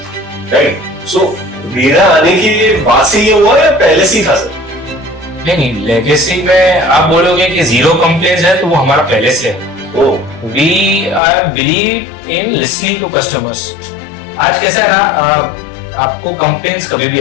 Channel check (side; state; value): right; drops out; at 11.2 s